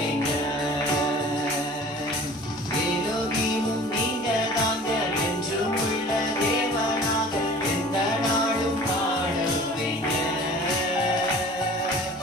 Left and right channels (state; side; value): noise; right; hum, 27 dB below the sound